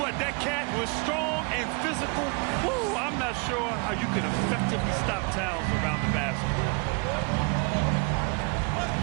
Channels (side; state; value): left; quieter; 33.1 dB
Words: what, that cat was strong and physical. Woo, I'm not sure how you can effectively stop Towns around the basket.